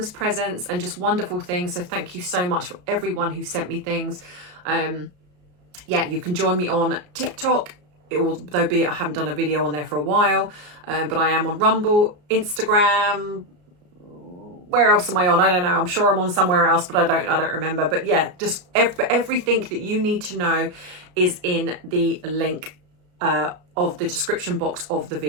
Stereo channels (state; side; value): late; left; 33 ms